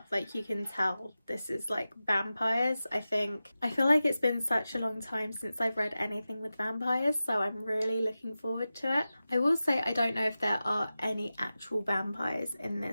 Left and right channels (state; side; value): inverted; both; correlation -0.94